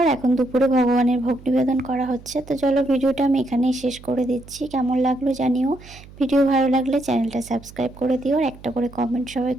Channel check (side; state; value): right; noise; hum, 20 dB below the sound